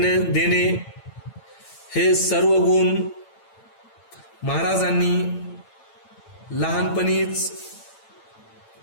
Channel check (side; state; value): right; late; 9.0 ms